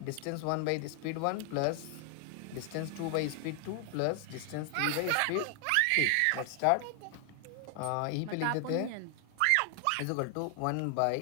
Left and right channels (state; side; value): different; both; correlation 0.00